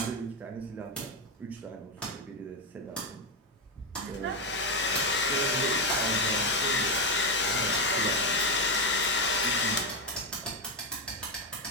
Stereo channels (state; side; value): normal; both; correlation 0.08